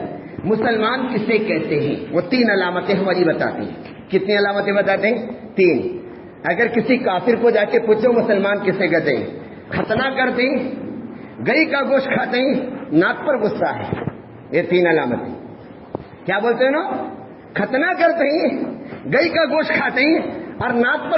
مسلمان کسے کہتے ہیں، وہ 3 علامتیں ہماری بتاتے ہیں. کتنی علامتیں بتاتے ہیں؟ 3. اگر کسی کافر کو جا کے پوچھو مسلمان کسے کہتے ہیں، ختنہ کرتے ہیں، گئی کا گوشت کھاتے ہیں، ناک پر غصہ ہے. یہ 3 علامتیں. کیا بولتے ہیں نا؟ ختنہ کرتے ہیں، گئی کا گوشت کھاتے ہیں اور ناک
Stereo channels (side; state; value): both; identical; correlation 1.00